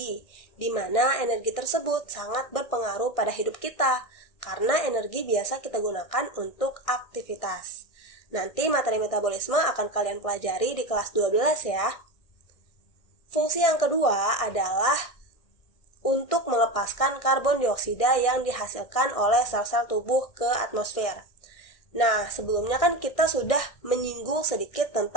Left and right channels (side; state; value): right; late; 1.6 ms